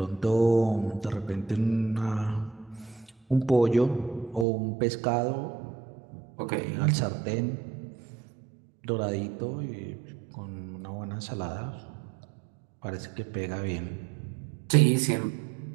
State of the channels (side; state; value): left; drops out; at 4.5 s